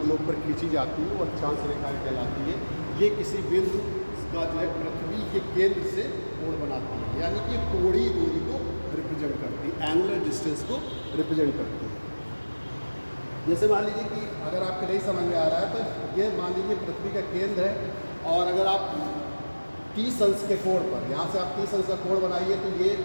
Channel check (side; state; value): both; inverted; correlation -1.00